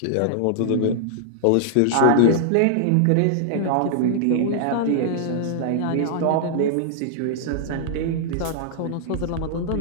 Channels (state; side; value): different; both; correlation -0.01